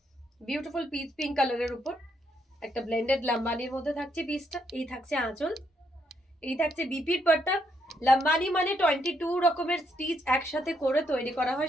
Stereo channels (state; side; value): normal; both; correlation 0.75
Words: Beautiful pitch pink কালারের উপর একটা ব্লেন্ডেড লাম্বানির মধ্যে থাকছে পিসটা। এই থাকছে আঁচল, এই থাকছে বিপির পাট্টা। লাম্বানি মানে 22 রকমের স্টিচ একসাথে করে তৈরি করা